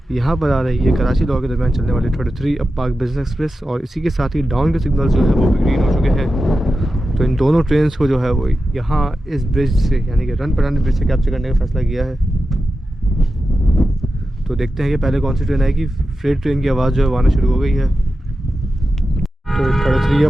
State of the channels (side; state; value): both; normal; correlation 0.92